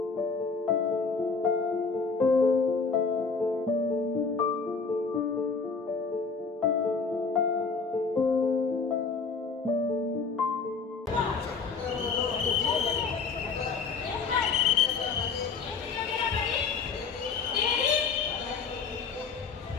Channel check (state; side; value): quieter; right; 5.0 dB